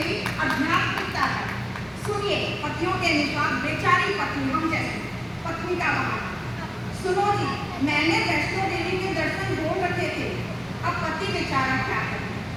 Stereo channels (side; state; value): both; identical; correlation 1.00